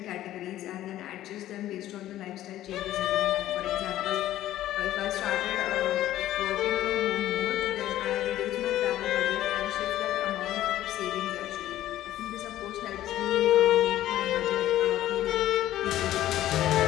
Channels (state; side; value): quieter; right; 13.6 dB